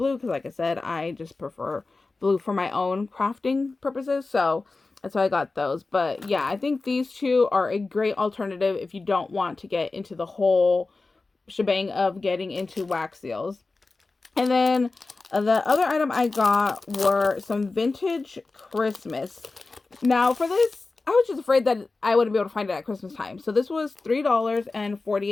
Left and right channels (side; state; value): right; quieter; 3.6 dB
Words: because, like I said, I just prefer blue for my own crafting purposes. So that's why I got those. But yeah, I think these two are a great alternative if you don't want to get into the whole shebang of getting into wax seals. And then the other item I got were some vintage Christmas. Now for this, I was just afraid that I wouldn't be able to find it at Christmas time. So this was